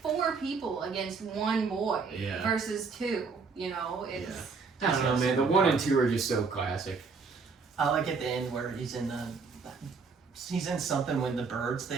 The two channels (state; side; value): quieter; left; 4.9 dB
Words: 4 people against 1 boy Yeah. versus 2. You know, it's I don't know, man. The 1 and 2 are just so classic. I like at the end where he's in something when the bird's